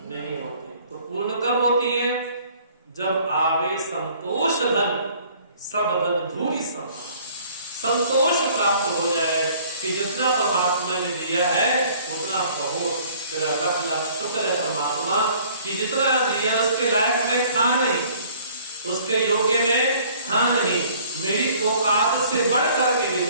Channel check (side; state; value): both; inverted; correlation -0.55